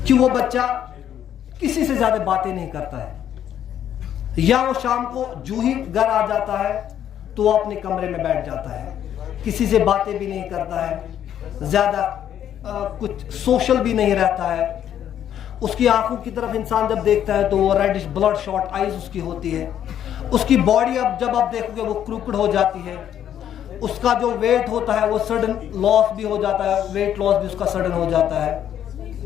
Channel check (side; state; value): right; quieter; 10.2 dB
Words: कि वो बच्चा किसी से ज्यादा बातें नहीं करता है, या वो शाम को जूं ही घर आ जाता है तो वो अपने कमरे में बैठ जाता है, किसी से बातें भी नहीं करता है, ज्यादा कुछ सोशल भी नहीं रहता है, उसकी आंखों की तरफ इंसान जब देखता है तो वो रेडिश ब्लड शॉट आईज उसकी होती है, उसकी बॉडी अब जब आप देखोगे वो क्रूकड हो जाती है, उसका जो वेट होता है वो सडन लॉस भी हो जाता है, वेट लॉस भी उसका सडन हो जाता है।